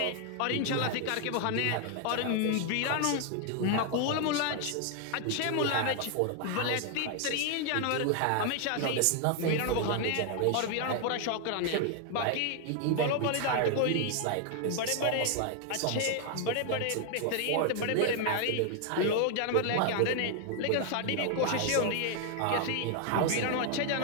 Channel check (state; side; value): different; both; correlation 0.00